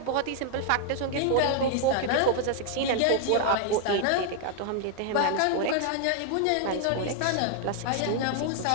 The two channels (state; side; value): different; both; correlation 0.00